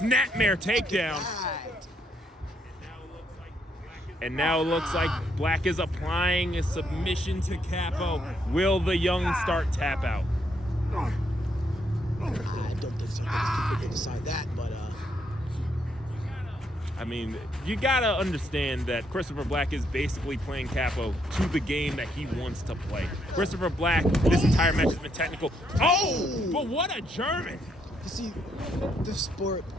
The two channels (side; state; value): both; normal; correlation 0.74